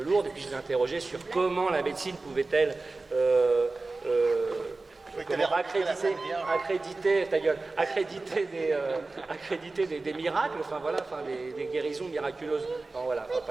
Lourdes, et puis je l'ai interrogé sur comment la médecine pouvait-elle accréditer des miracles, enfin voilà, enfin des guérisons miraculeuses. Non, voilà, enfin,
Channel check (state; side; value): quieter; left; 3.5 dB